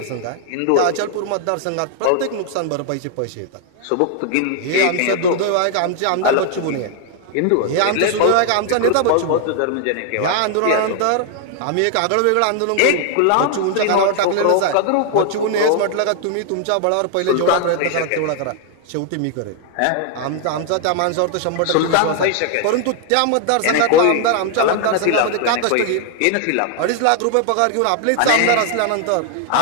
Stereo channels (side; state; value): both; different; correlation 0.00